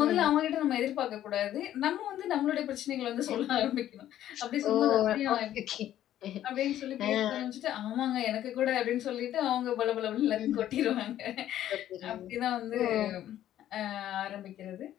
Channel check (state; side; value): quieter; right; 12.1 dB